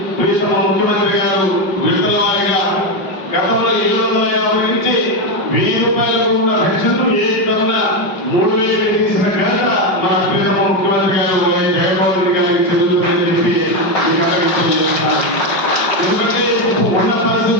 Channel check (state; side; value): late; right; 5.2 ms